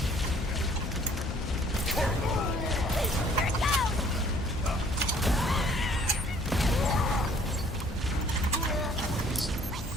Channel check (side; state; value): both; normal; correlation 0.58